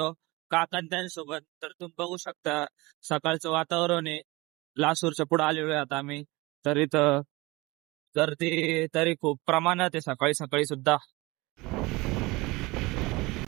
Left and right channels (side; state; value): left; quieter; 22.8 dB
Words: काकांत्यांसोबत. तर तुम्ही बघू शकता सकाळचं वातावरण आहे. लासूरच्या पुढे आलेलो आहे आता आम्ही. तर इथं गर्दी तरी खूप प्रमाणात आहे सकाळी सकाळी सुद्धा.